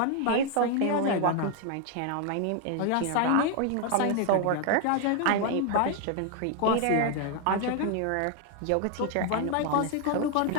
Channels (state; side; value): different; both; correlation 0.00